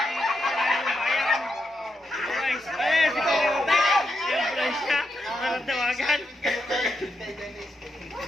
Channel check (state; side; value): normal; both; correlation 0.84